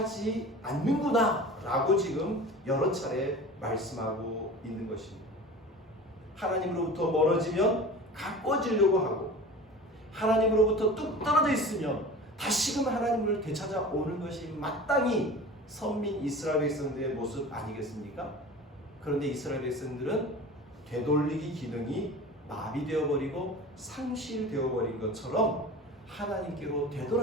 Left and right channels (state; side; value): normal; both; correlation 0.37